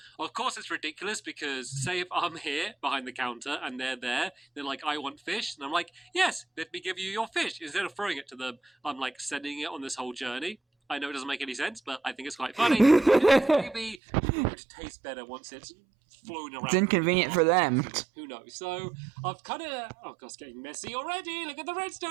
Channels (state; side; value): drops out; left; at 14.0 s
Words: Of course, it's ridiculous because say if I'm here behind the counter and they're there, they're like, I want fish, and I'm like, yes, let me give you your fish. Instead of throwing it to them, I'm like sending it on this whole journey. I know it doesn't make any sense, but I think it's quite funny. Maybe it would taste better once it's flown around. It's inconvenient for them. Who knows? So I've kind of... Oh, God, it's getting messy already. Look at the